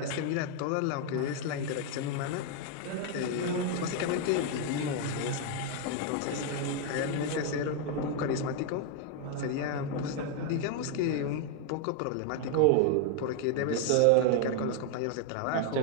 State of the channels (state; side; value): different; both; correlation 0.00